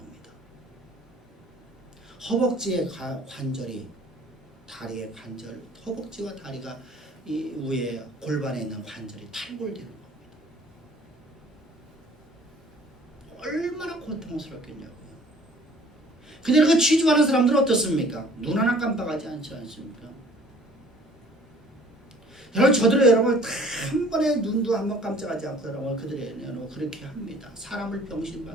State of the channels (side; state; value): both; normal; correlation 0.52